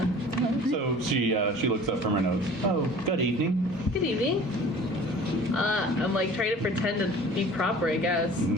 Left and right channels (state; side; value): normal; both; correlation 0.45